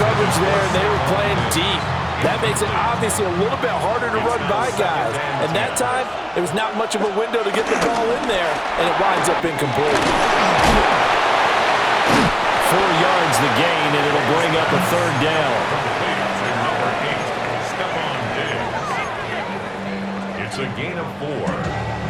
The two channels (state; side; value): identical; both; correlation 1.00